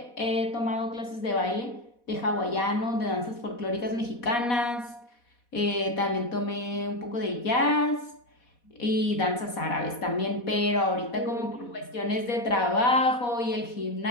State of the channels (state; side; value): late; right; 4.1 ms